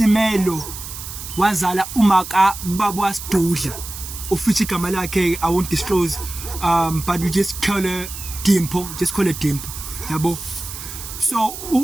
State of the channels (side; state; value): right; noise; hiss, 10 dB below the sound